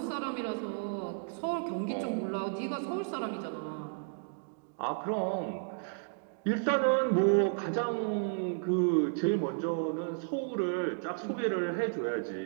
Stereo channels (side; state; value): left; silent; digital silence